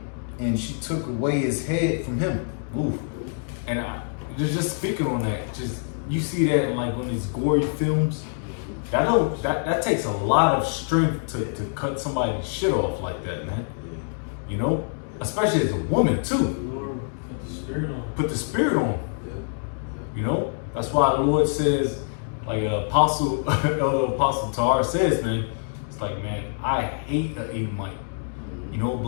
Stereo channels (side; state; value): right; silent; digital silence